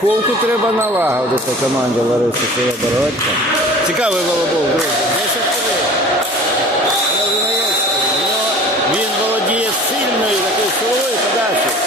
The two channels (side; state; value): both; normal; correlation 0.43